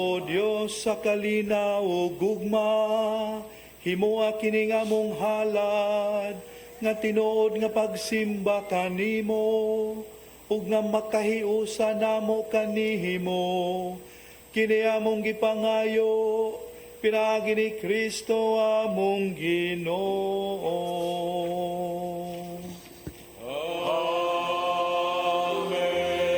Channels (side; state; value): both; identical; correlation 1.00